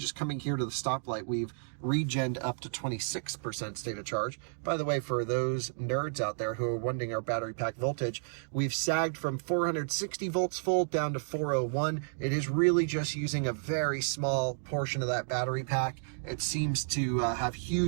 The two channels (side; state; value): left; silent; digital silence